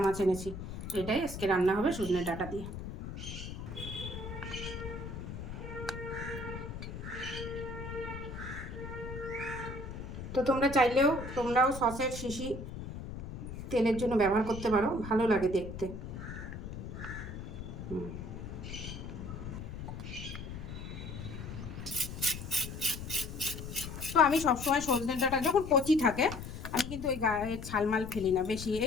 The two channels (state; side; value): noise; left; rumble, 9 dB below the sound